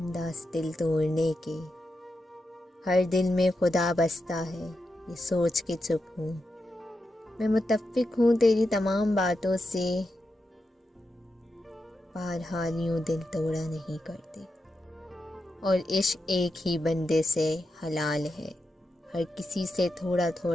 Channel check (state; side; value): normal; both; correlation 0.87